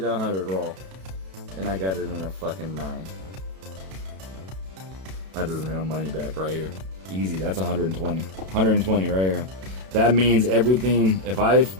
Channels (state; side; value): late; left; 32 ms